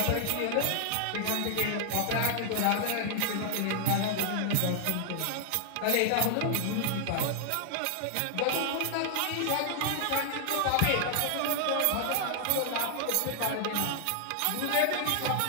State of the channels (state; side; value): different; both; correlation 0.00